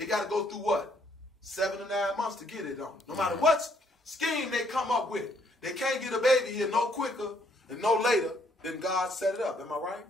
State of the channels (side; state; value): both; normal; correlation 0.68